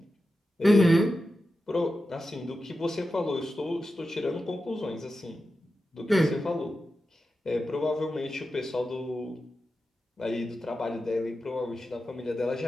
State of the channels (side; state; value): both; normal; correlation 0.91